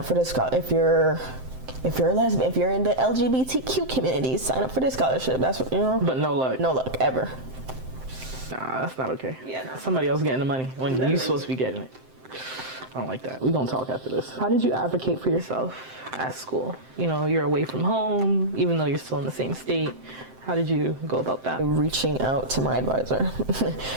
for this scholarship. If you're a lesbian, if you're in the LGBTQ community, sign up for this scholarship. That's what, you know. But no luck. No luck, ever. Nah, that's not okay. Yeah, no. Somebody else getting the money when you're supposed to be getting it. I don't like that. We're gonna talk after this. How did you advocate for yourself at school? You know, you're away from home, even though you're still in the same state. How did you go about that? Reaching out to my advisor.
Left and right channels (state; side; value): late; left; 7.7 ms